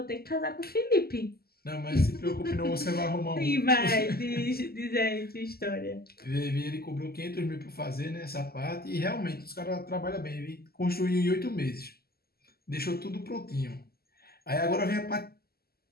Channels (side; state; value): right; late; 0.45 ms